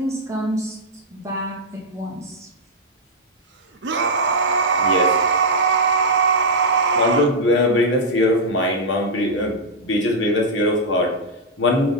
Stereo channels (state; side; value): normal; both; correlation -0.04